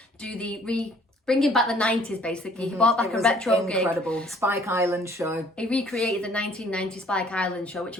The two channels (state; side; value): normal; both; correlation 0.59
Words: do the bringing back the 90s, basically. He brought back a retro gig. Incredible. Spike Island show. He recreated the 1990 Spike Island show, which